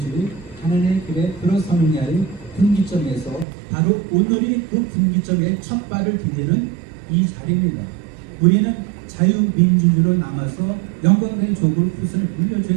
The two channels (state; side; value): drops out; left; at 3.5 s